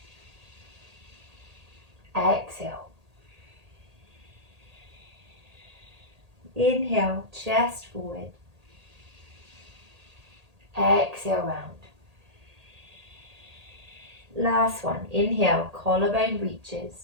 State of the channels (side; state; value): left; late; 1.8 ms